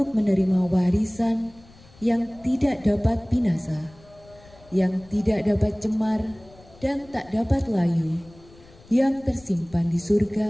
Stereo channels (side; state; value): left; noise; rumble, 25 dB below the sound